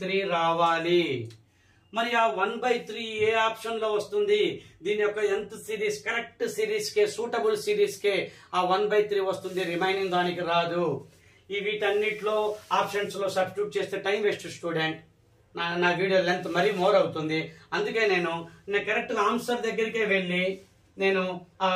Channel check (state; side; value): identical; both; correlation 1.00